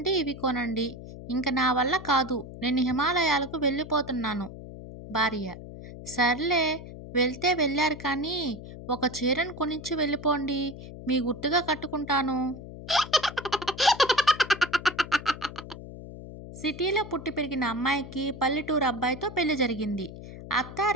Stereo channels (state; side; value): noise; left; hum, 13 dB below the sound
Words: ఇవి కొనండి. ఇంక నా వల్ల కాదు. నేను హిమాలయాలకు వెళ్ళిపోతున్నాను. భార్య. సర్లే వెళ్తే వెళ్లారు కానీ, ఒక చీరను కొనిచ్చి వెళ్ళిపోండి. మీ గుర్తుగా కట్టుకుంటాను. సిటీలో పుట్టి పెరిగిన అమ్మాయికి పల్లెటూరు అబ్బాయితో పెళ్లి జరిగింది.